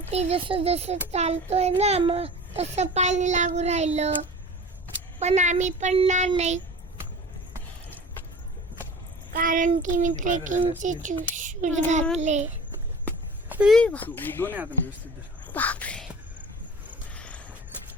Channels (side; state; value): both; normal; correlation 0.40